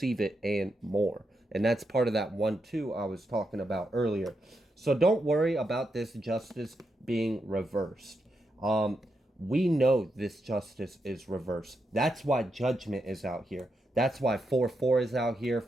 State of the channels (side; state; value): both; normal; correlation 0.84